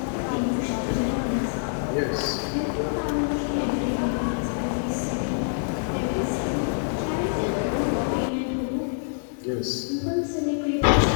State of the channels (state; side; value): silent; right; 58 dB below the other